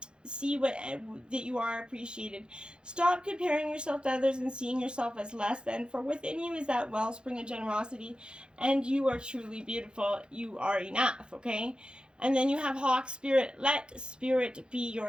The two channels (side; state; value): left; late; 0.051 ms